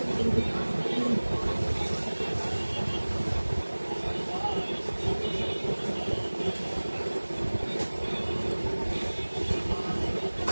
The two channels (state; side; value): inverted; both; correlation -1.00